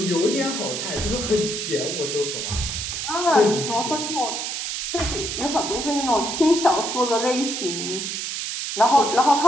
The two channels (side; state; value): right; noise; hiss, 4 dB below the sound